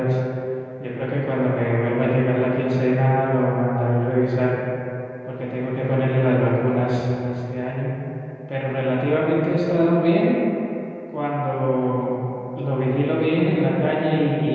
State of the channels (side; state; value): both; identical; correlation 1.00